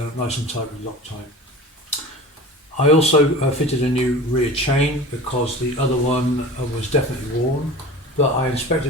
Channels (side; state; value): both; normal; correlation 0.37